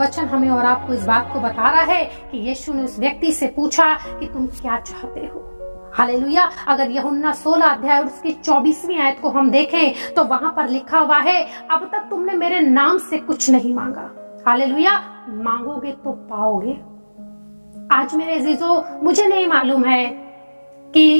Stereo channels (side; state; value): both; inverted; correlation -1.00